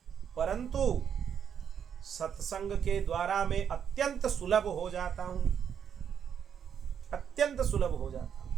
परंतु सत्संग के द्वारा मैं अत्यंत सुलभ हो जाता हूं, अत्यंत सुलभ हो जाता हूं।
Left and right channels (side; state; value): left; quieter; 8.1 dB